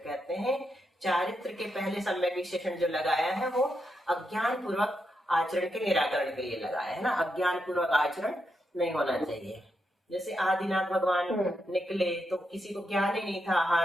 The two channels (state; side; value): normal; both; correlation 0.83